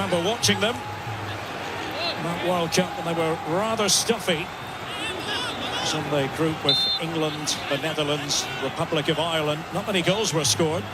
watching them? That World Cup when they were rather stuffy. It was in the group with England, the Netherlands, Republic of Ireland. Not many goals were scored.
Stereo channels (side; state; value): both; identical; correlation 1.00